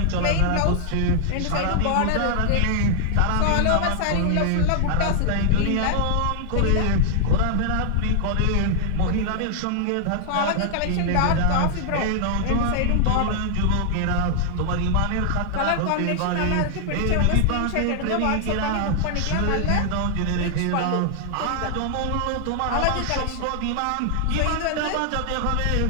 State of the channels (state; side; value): different; both; correlation 0.00